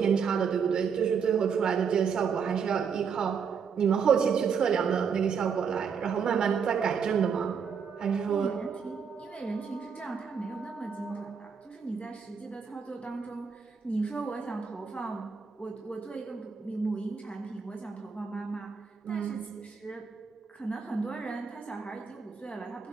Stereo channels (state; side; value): quieter; left; 6.3 dB